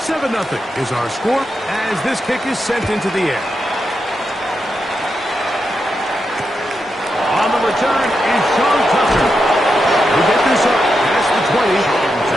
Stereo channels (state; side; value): normal; both; correlation 0.86